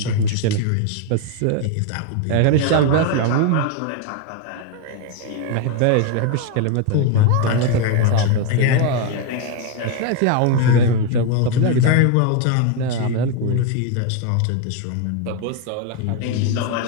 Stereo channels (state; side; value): different; both; correlation 0.01